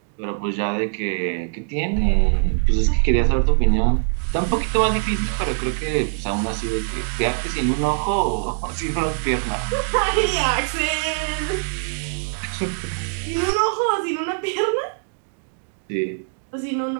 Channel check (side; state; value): left; silent; digital silence